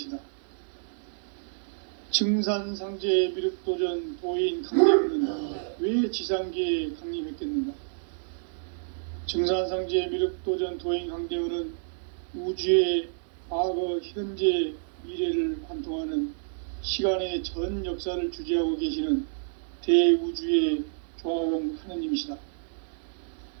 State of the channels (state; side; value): silent; left; 59 dB below the other